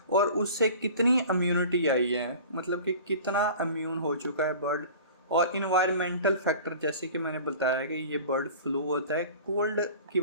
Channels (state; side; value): inverted; both; correlation -0.41